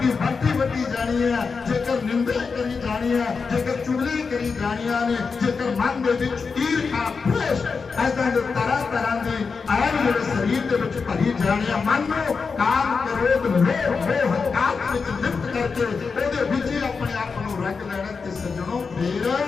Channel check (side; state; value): right; quieter; 5.0 dB